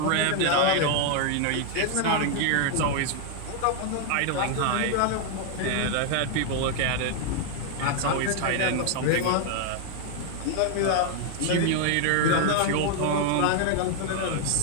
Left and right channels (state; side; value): different; both; correlation 0.00